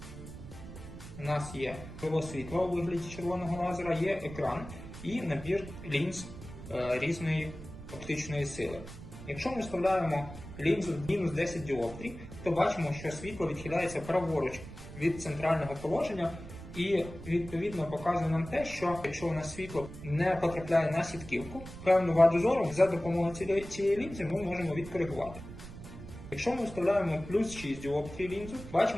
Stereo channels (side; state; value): right; noise; rumble, 13 dB below the sound